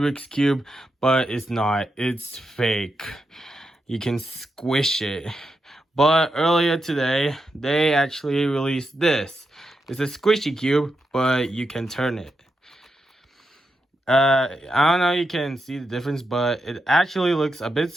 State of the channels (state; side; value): normal; both; correlation 0.86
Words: Cube, but it's not, it's fake. You can squish it. But earlier today, they actually released this. It's a squishy cube, but you can turn it. I don't know if you can see the difference, but it actually looks a bit